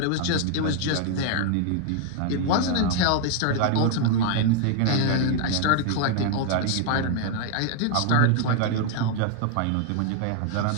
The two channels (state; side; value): different; both; correlation 0.00